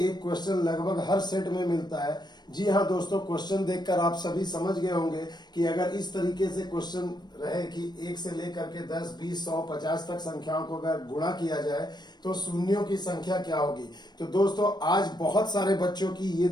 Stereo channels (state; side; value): late; right; 0.21 ms